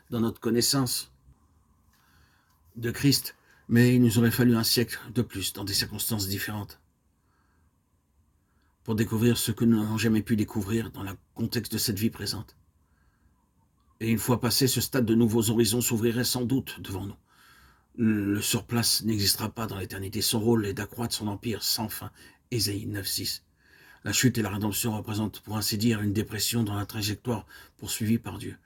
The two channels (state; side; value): identical; both; correlation 1.00